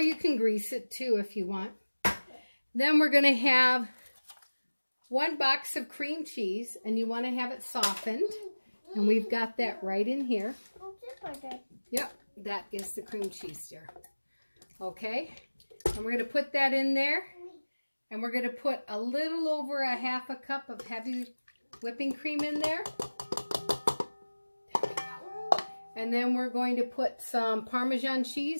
you can grease it too if you want. Then we're going to have 1 box of cream cheese. And you want to have it softened. And we've got that right in here. Yep. That is the cream cheese there. Okay. And we're going to put that in there. And we're going to put a little over a half a cup of heavy whipping cream in there. There we go. And then we're going to put some Parmesan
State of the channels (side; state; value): both; inverted; correlation -1.00